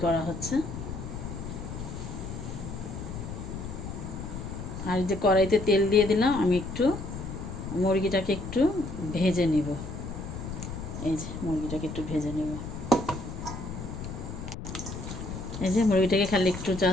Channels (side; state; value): left; noise; rumble, 8 dB below the sound